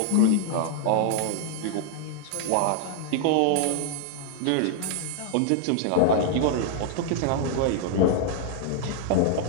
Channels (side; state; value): both; different; correlation -0.01